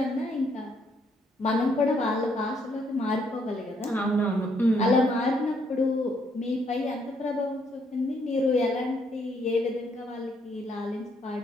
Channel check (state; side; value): normal; both; correlation 0.71